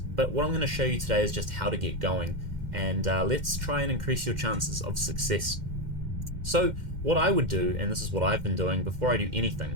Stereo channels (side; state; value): left; late; 2.1 ms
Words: But what I'm going to show you today is just how to get going, and let's try and increase your chances of success. So what I would do, and this is what I've been doing before I do